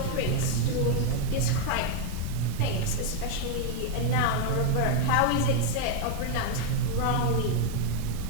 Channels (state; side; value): different; both; correlation 0.00